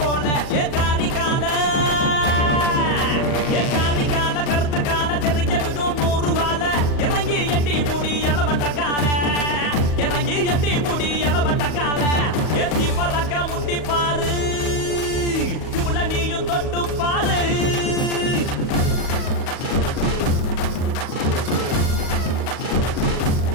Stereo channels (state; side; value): late; right; 38 ms